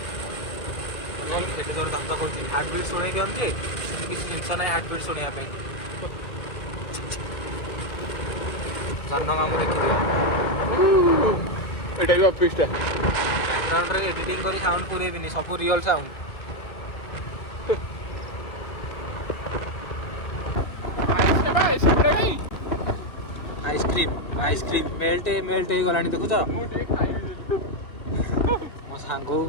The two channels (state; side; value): late; right; 2.3 ms